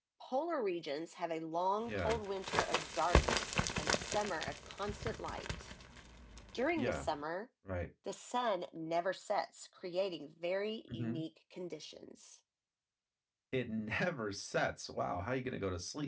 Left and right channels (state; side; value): identical; both; correlation 1.00